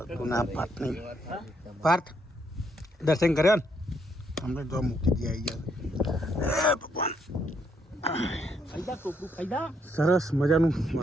ગુના પાર્થ નહીં. પાર્થ દર્શન કર્યા ને અમને જો મૂકી દે આવી ગયા. ભગવાન ફાયદા ટોપલું ફાયદા સરસ મજાનું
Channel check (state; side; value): normal; both; correlation 0.73